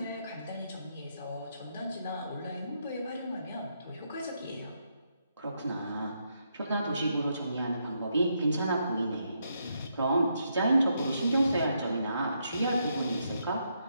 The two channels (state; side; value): inverted; both; correlation -0.79